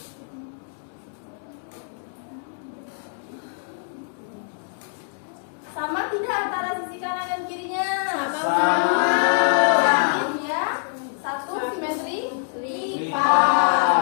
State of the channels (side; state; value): right; silent; digital silence